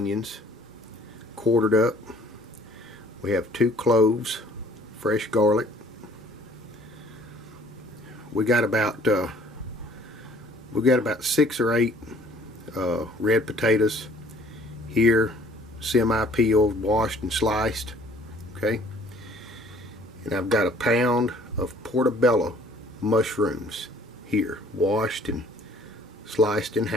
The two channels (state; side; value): normal; both; correlation 0.56